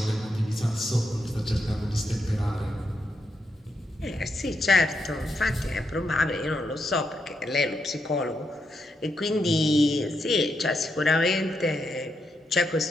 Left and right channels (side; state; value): both; normal; correlation 0.82